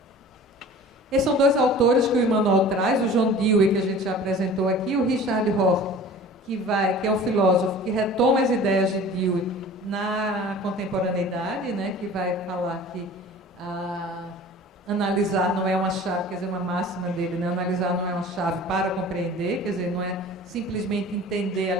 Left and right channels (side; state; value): both; normal; correlation 0.42